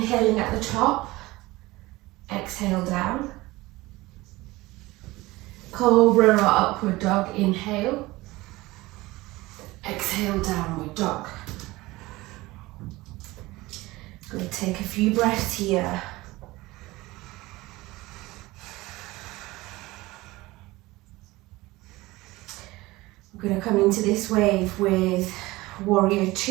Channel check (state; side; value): quieter; left; 20.0 dB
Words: at the top. Exhale down. Cobra or upward dog. Inhale. Exhale, downward dog. Going to take a few breaths here. We're going to come into this wave with warrior